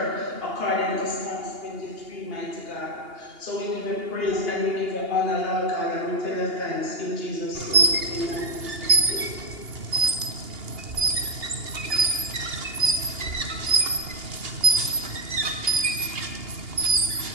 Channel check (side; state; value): left; late; 2.8 ms